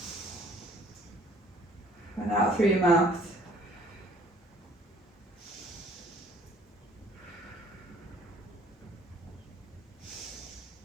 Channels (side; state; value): both; normal; correlation 0.57